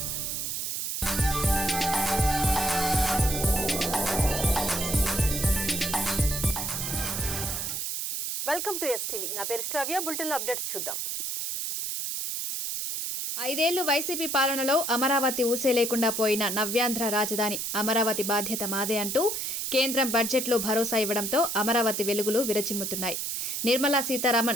to STV. నా పేరు శ్రావ్య. బులెటిన్లో అప్డేట్స్ చూద్దాం. 5 ఏళ్లు వైసీపీ పాలనలో అమరావతి ఊసే లేకుండా పోయిన నవ్యాంధ్ర రాజధాని అమరావతి బాధ్యత మాదే అంటూ కేంద్రం బడ్జెట్లో భరోసా ఇవ్వడంతో అమరావతి వెలుగులు విరచిమ్ముతున్నాయి. నిర్మలా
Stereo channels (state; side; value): noise; right; hiss, 2 dB below the sound